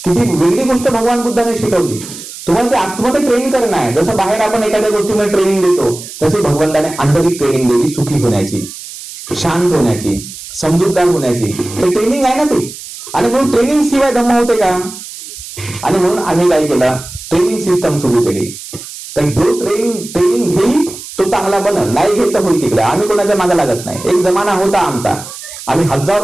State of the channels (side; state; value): right; noise; hiss, 13 dB below the sound